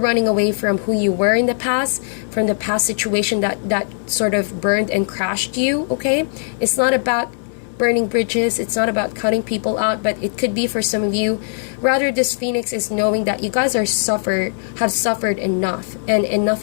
away from who you were in the past, from the past situation that sort of burned and crashed you, okay? It's not about burning bridges, it's not about cutting people out, but it could be for some of you. Rather, this Phoenix is knowing that you guys have suffered enough, and enough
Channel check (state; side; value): silent; right; digital silence